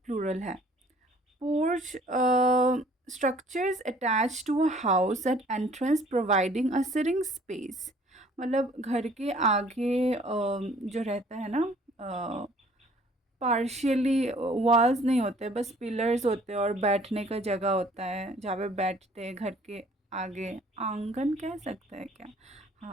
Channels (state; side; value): normal; both; correlation 0.56